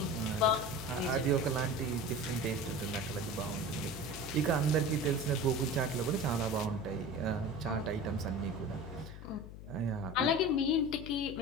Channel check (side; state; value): left; noise; hum, 13 dB below the sound